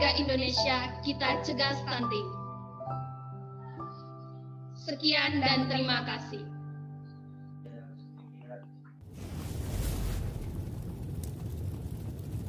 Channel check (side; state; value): both; identical; correlation 1.00